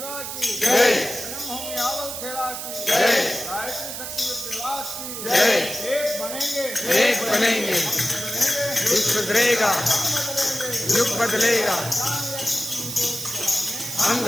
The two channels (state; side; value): noise; right; hiss, 7 dB below the sound